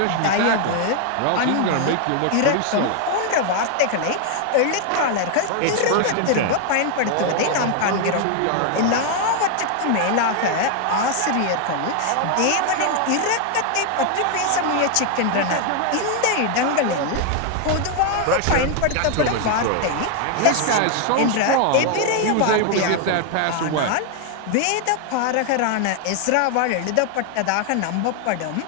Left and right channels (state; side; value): different; both; correlation 0.00